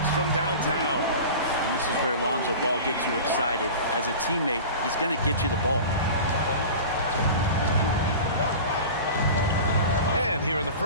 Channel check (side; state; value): both; inverted; correlation -0.35